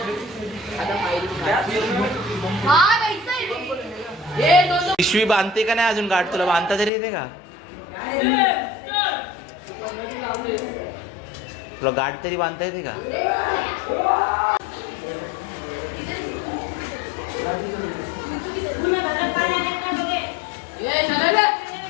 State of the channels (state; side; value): drops out; right; at 6.9 s